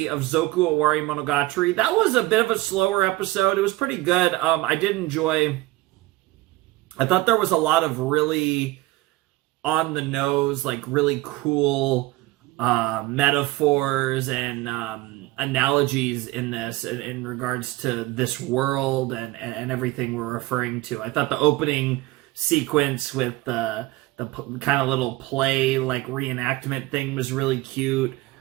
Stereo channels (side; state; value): left; quieter; 19.2 dB